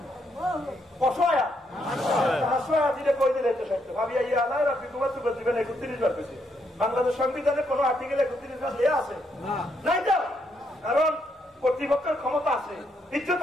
অসহায়া হাসুয়া দিলে কই দিলে তো সত্য ভাবি আইয়া আল্লাহ রাব্বি তোমার তো জীবনে 31 বার পেয়েছি বাংলাদেশ সংবিধানে কোন আর্টিকেলে 31 বার দেয়া আছে নাই তো কারণ কর্তৃপক্ষের ক্ষমতা আছে ইজ্জত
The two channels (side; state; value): both; normal; correlation 0.76